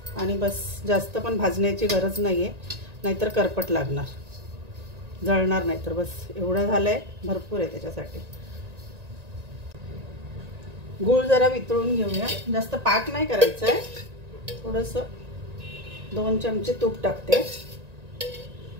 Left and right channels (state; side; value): late; left; 1.9 ms